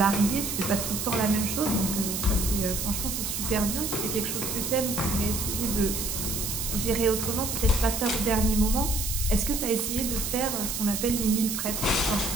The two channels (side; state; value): right; noise; hiss, 3 dB below the sound